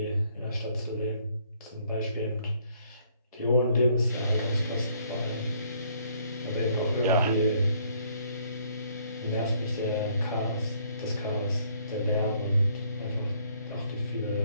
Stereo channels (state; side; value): inverted; both; correlation -0.65